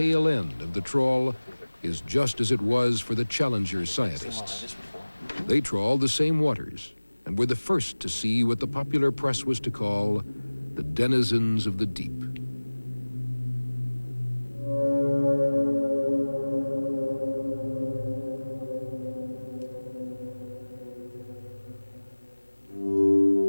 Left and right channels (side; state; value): both; inverted; correlation -1.00